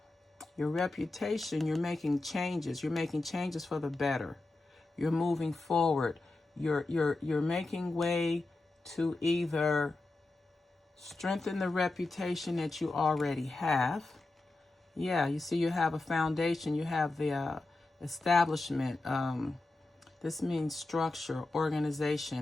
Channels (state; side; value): quieter; right; 3.1 dB